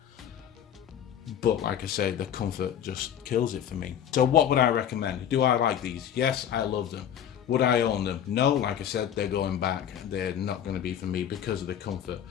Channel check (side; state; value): right; quieter; 9.6 dB